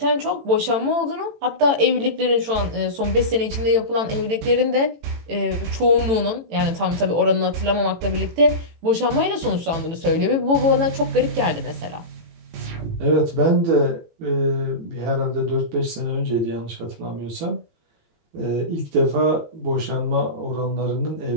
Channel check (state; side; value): late; left; 18 ms